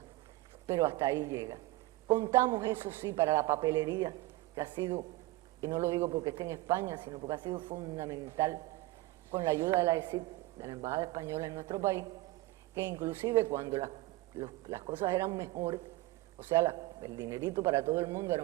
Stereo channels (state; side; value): quieter; left; 18.9 dB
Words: pero hasta ahí llega. Contamos, eso sí, para la papelería, que ha sido, y no lo digo porque esté en España, sino porque ha sido fundamental, con la ayuda de la ESIC, de la Embajada Española en nuestro país, que inclusive cuando las cosas eran mejores, o sea, el dinerito para todo el mundo era